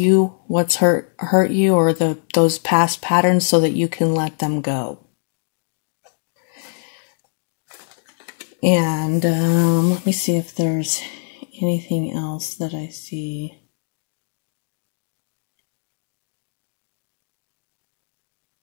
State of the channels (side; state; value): right; silent; 64 dB below the other